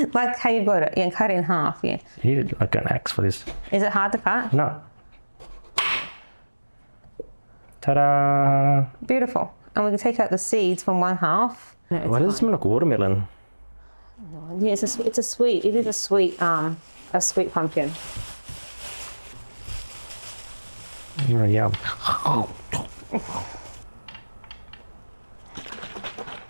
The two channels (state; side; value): inverted; both; correlation -1.00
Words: like how you got it, yeah, cut it in half, yeah. You need like an axe for this. Is it hard to cut? No. Ta-da! Beautiful. And we can take out the seeds from one half. No, Why does it smell like watermelon? yeah, it is a sweet pumpkin. Oh, yum.